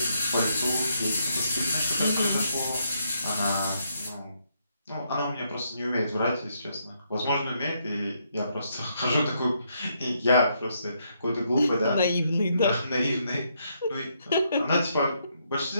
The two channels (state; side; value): inverted; both; correlation -0.76